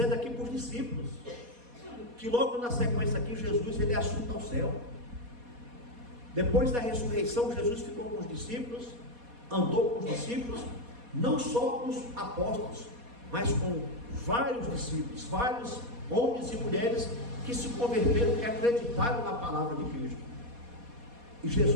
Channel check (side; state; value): left; late; 4.2 ms